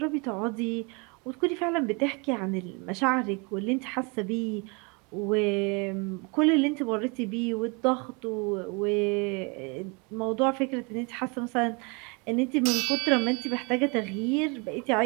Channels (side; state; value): left; quieter; 30.9 dB